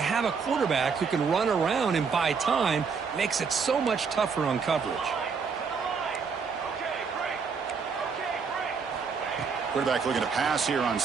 a quarterback who can run around and buy time, it makes it so much tougher on coverage. Quarterback looking to pass here on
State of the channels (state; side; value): quieter; left; 5.6 dB